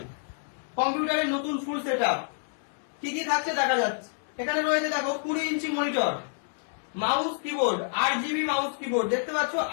কম্পিউটারের নতুন ফুল সেটআপ কি কি থাকছে দেখা যাচ্ছে। এখানে রয়েছে দেখো 20 inch monitor, mouse keyboard, 8GB mouse keyboard, দেখতে পাচ্ছ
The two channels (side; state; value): right; silent; 59 dB below the other